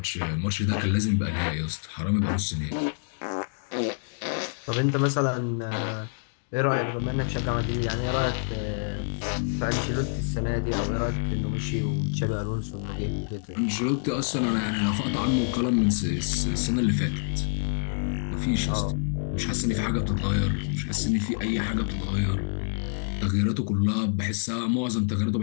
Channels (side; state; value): right; silent; digital silence